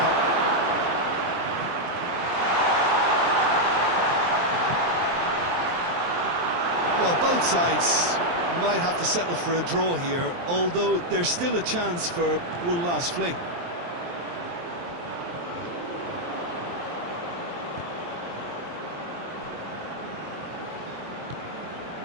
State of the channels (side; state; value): left; late; 23 ms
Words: Well, both sides might have to settle for a draw here, although there's still a chance for one last fling.